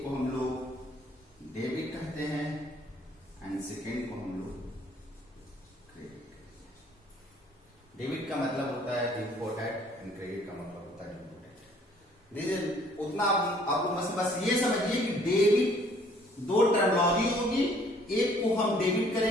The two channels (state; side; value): normal; both; correlation 0.59